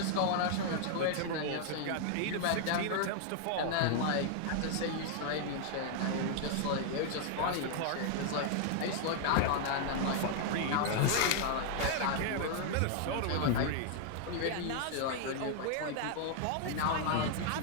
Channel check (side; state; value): both; different; correlation 0.00